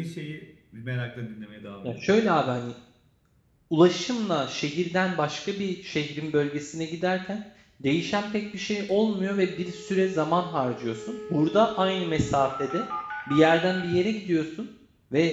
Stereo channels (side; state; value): both; identical; correlation 1.00